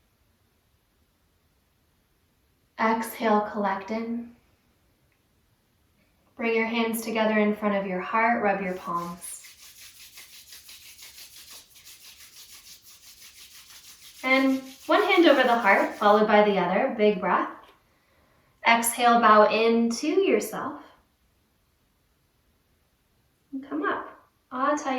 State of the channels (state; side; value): identical; both; correlation 1.00